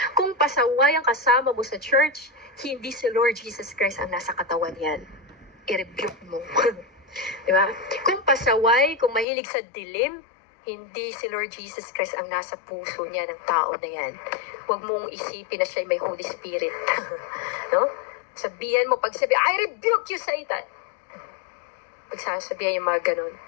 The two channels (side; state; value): right; drops out; at 9.2 s